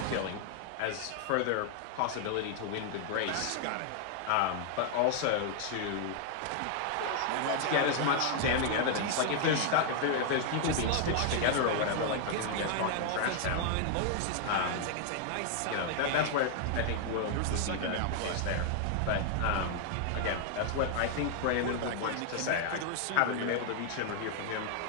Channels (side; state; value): both; different; correlation 0.00